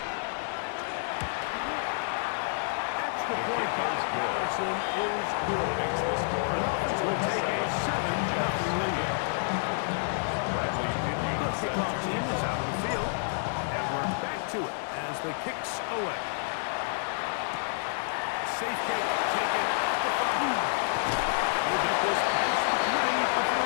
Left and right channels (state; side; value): silent; right; digital silence